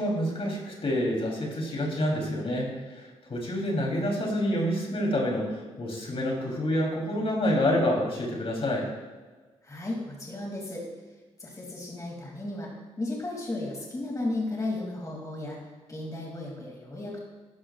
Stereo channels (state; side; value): normal; both; correlation 0.72